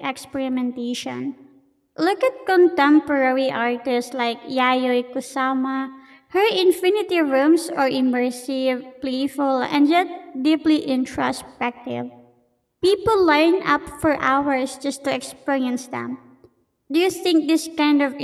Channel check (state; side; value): identical; both; correlation 1.00